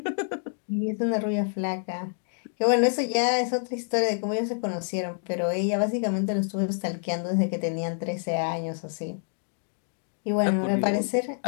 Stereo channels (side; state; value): right; silent; 60 dB below the other